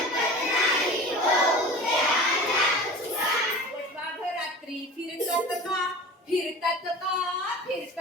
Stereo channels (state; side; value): normal; both; correlation 0.37